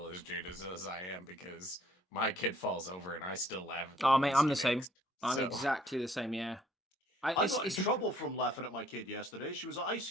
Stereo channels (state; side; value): normal; both; correlation 0.61